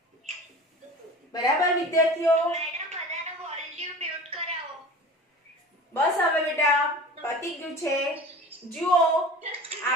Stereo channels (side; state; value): both; normal; correlation 0.38